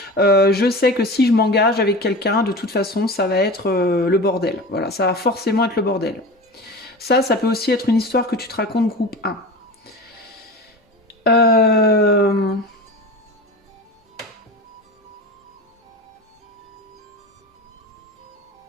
je sais que si je m'engage avec quelqu'un, de toute façon, ça va être le bordel. Voilà, ça va forcément être le bordel. Ça peut aussi être une histoire que tu te racontes groupe 1. Euh...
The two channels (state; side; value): normal; both; correlation 0.31